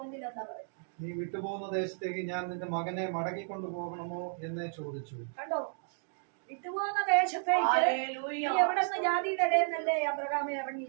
എന്താ പറയുക? നീ വിട്ടുപോകുന്ന ദേശത്തേക്ക് ഞാൻ നിന്റെ മകനെ മടക്കിക്കൊണ്ടു പോകണമോ എന്ന് ചോദിച്ചു. കണ്ടോ, വിട്ടുപോകുന്ന ദേശത്തേക്ക് എവിടെ നിന്ന് ജാതിയുടെ ഇടയെന്നല്ലേ അബ്രഹാമെ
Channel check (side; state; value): left; silent; digital silence